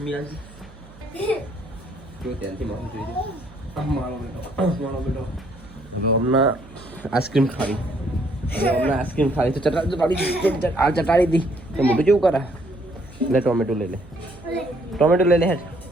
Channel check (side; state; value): right; noise; hum, 22 dB below the sound